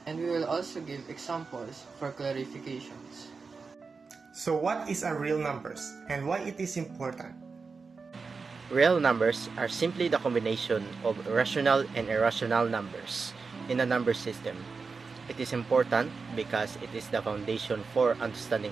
and we will also give examples for clarifications. So what is a real numbers and why it is important? Real numbers are simply the combination of rational and irrational numbers in a number system. It is important because it is the foundation for understanding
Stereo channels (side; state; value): left; quieter; 4.7 dB